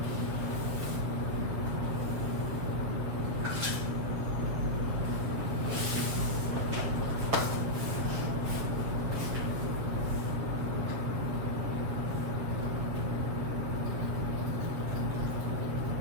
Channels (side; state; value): left; late; 7.7 ms